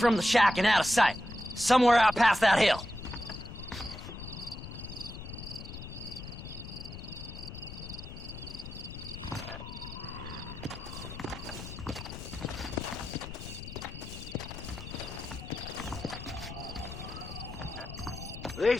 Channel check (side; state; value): left; noise; rumble, 10 dB below the sound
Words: the shack and out of sight. Somewhere out past that hill.